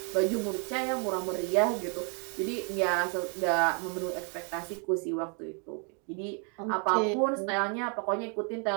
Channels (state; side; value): quieter; left; 37.8 dB